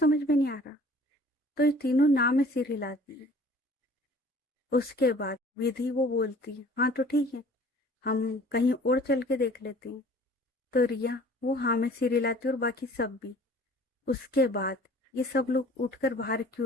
में नहीं आ रहा? तो ये तीनों नाम में सिर हिलाती है। उसके बाद विधि वो बोलती है, हाँ तो ठीक है, हम कहीं और चल के देख लेते हैं। तो रिया वो हाँ में सिर हिलाती है और बाकी सब भी। उसके बाद ये सब लोग उठकर बाहर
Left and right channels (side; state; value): both; normal; correlation 0.50